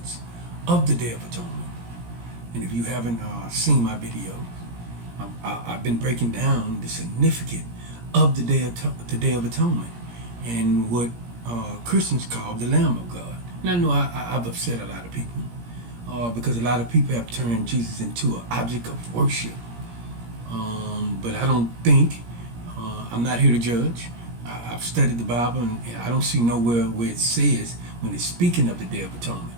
of the Day of Atonement. And if you haven't seen my video, I've been breaking down the significance of the Day of Atonement and what Christians call the Lamb of God. And I know I've upset a lot of people. Because a lot of people have turned Jesus into an object of worship. But I don't think, I'm not here to judge. I've studied the Bible and I don't see nowhere where it says, when it's speaking of the Day of Atonement,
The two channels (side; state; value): left; late; 17 ms